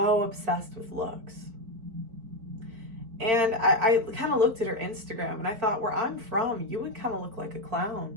obsessed with looks. And I kind of looked at her Instagram and I thought, where I'm from, you would kind of look like a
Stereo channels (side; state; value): left; late; 4.5 ms